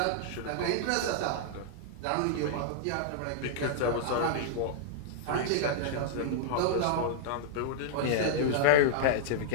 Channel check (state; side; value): different; both; correlation -0.02